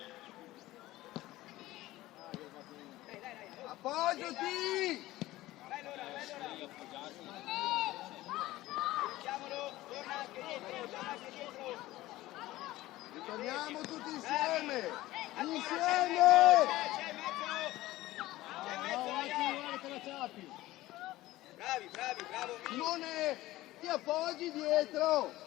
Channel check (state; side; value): quieter; right; 17.0 dB